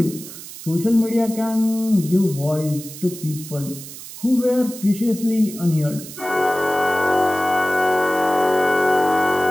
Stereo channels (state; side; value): noise; right; hiss, 13 dB below the sound